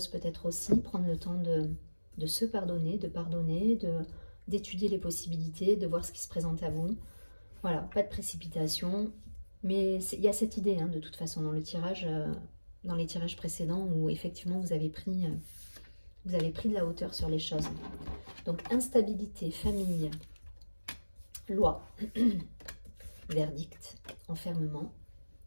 peut-être aussi, prendre le temps de se pardonner, d'étudier les possibilités, de voir ce qui se présente à vous. Voilà, pas de précipitation. Mais il y a cette idée, hein, de toute façon, dans les tirages précédents, où effectivement vous avez pris de la hauteur sur les choses. Donc, instabilité, famille, loi, verdict, enfermement,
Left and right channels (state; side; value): inverted; both; correlation -1.00